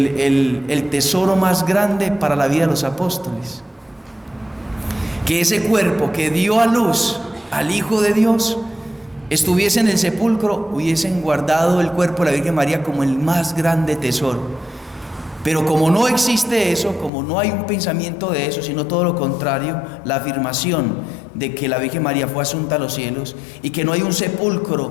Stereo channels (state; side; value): drops out; right; at 17.1 s